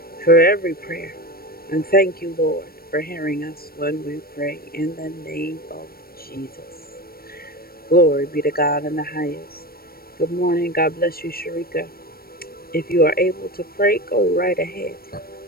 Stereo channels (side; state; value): right; late; 0.44 ms